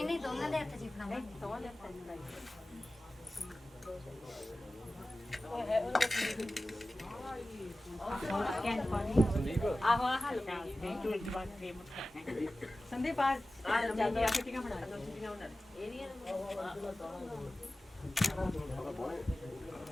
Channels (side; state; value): both; normal; correlation 0.96